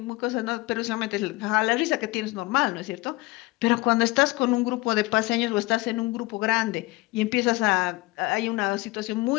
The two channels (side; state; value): right; quieter; 21.6 dB